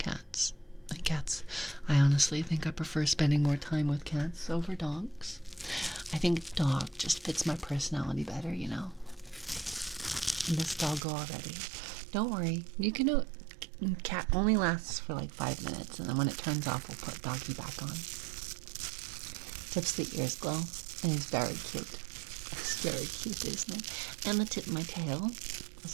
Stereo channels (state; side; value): drops out; left; at 11.0 s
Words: Cats, I honestly think I prefer spending more time with cats over dogs. I think dog just fits my personality better, you know. And this doggo already. Don't worry, you can do. Cat only lasts for like 5 minutes, and then when it turns off, we'll put doggy back on. Tips the ears glow, and he's very cute. It's very cute, isn't it? And the tip of my tail is